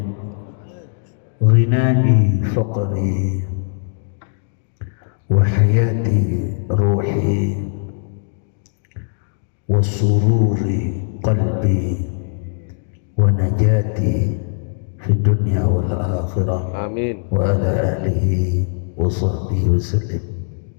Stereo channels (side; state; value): right; silent; digital silence